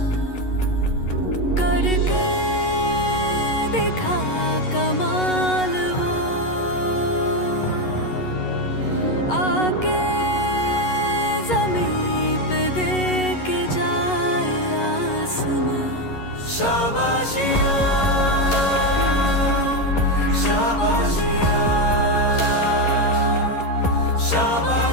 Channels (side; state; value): right; late; 11 ms